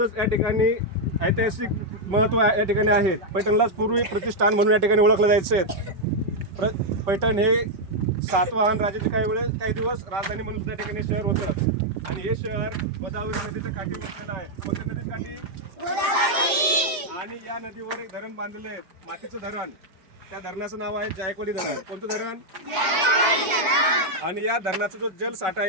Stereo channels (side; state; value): left; late; 5.4 ms